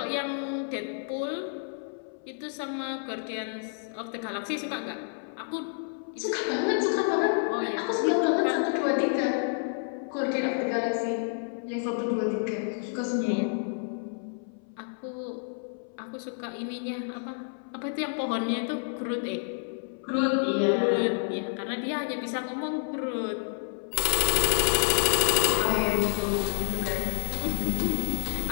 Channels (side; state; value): right; silent; 58 dB below the other